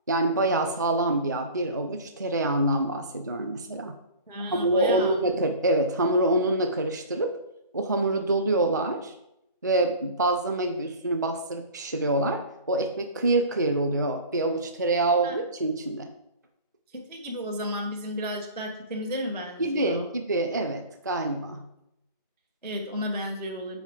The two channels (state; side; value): inverted; both; correlation -0.38